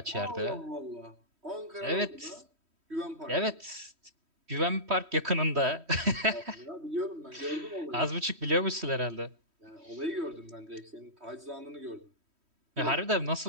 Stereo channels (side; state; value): left; late; 3.1 ms